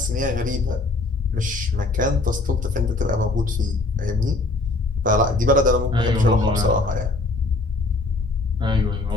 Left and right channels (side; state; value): right; quieter; 3.2 dB